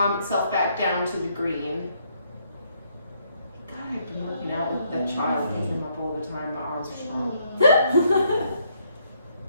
itself back down to the green. God, I've been working out with that child, picking him up all the time. My arms are strong.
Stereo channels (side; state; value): both; inverted; correlation -0.71